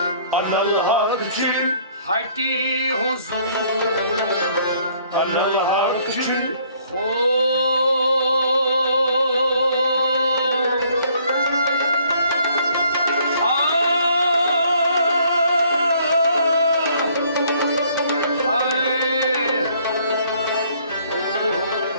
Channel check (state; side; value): inverted; both; correlation -0.62